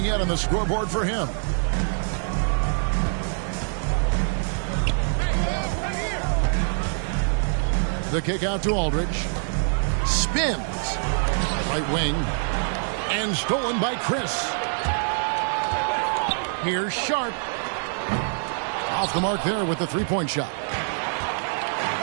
yet on the scoreboard for him. The kick out to Aldridge. Spins. Right wing. And stolen by Chris. Here's Sharp. Off the mark there with the three-point shot.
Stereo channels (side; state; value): left; silent; 60 dB below the other